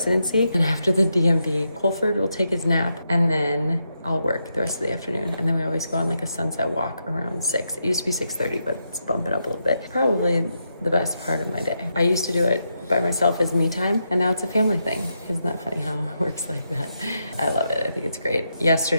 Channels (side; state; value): both; inverted; correlation -0.83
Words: And after the DMV, Colford will take his nap, and then I'll work the rest of the afternoon. And then we always go on like a sunset walk around 6. It used to be 6:30, but it's bumping up a little bit. Probably the best part of my day. I used to do it by myself as me time, and now it's a family thing. Isn't that funny how it works like that? I love it. I think it's great.